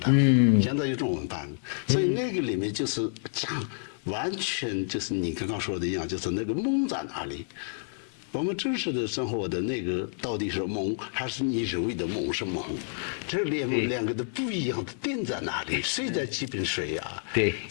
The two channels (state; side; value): silent; right; 59 dB below the other